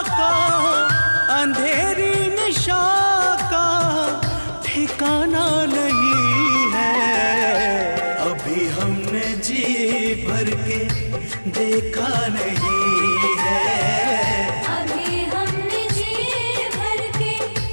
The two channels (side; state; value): both; inverted; correlation -1.00